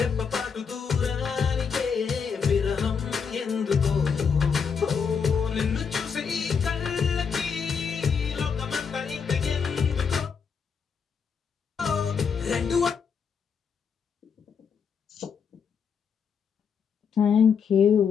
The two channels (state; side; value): quieter; right; 6.3 dB